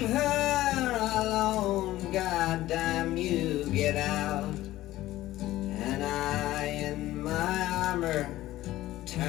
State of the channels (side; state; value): right; quieter; 15.6 dB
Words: her alone, goddamn you, get out." And I in my armor,